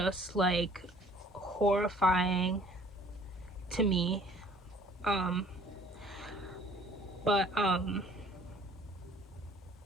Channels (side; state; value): both; normal; correlation 0.54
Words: like horrifying to me. um but um